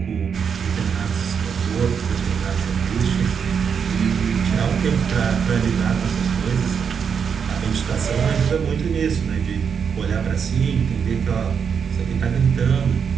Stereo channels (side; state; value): left; quieter; 6.8 dB